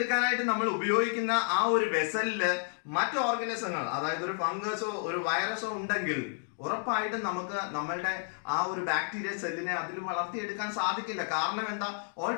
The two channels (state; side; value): silent; right; digital silence